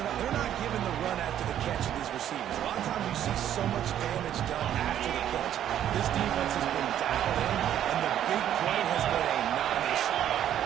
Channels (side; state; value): left; quieter; 10.8 dB